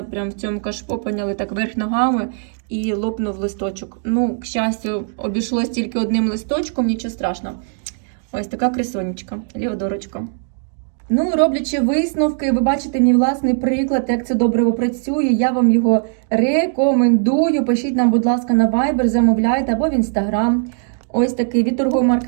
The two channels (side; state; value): left; silent; digital silence